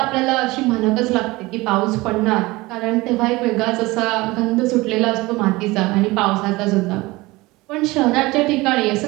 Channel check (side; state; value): left; quieter; 21.3 dB